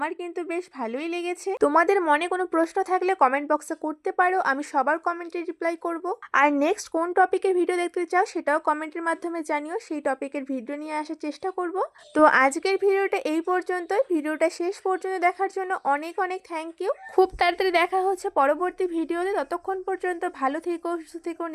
কিন্তু বেশ ভালোই লেগেছে। তোমাদের মনে কোনো প্রশ্ন থাকলে কমেন্ট বক্সে করতে পারো, আমি সবার কমেন্টে রিপ্লাই করব। আর নেক্সট কোন টপিকের ভিডিও দেখতে চাও সেটাও কমেন্টের মাধ্যমে জানিও, সেই টপিকের ভিডিও নিয়ে আসার চেষ্টা করব। তো আজকের ভিডিওটা এই পর্যন্তই। ভিডিওটা শেষ পর্যন্ত দেখার জন্য অনেক অনেক থ্যাংক ইউ। খুব তাড়াতাড়ি দেখা হচ্ছে পরবর্তী ভিডিওতে। ততক্ষণ পর্যন্ত ভালো থেকো, সুস্থ থেকো,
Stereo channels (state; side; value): identical; both; correlation 1.00